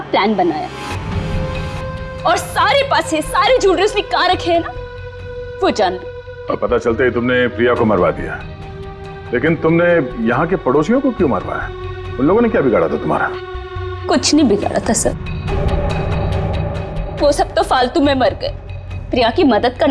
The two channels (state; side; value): identical; both; correlation 1.00